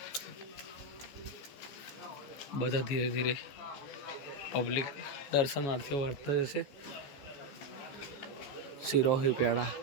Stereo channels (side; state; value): right; late; 14 ms